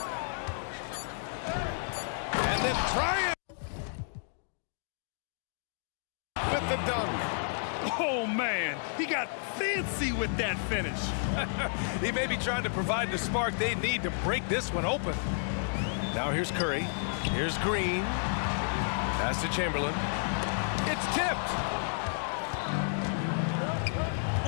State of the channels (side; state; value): right; silent; digital silence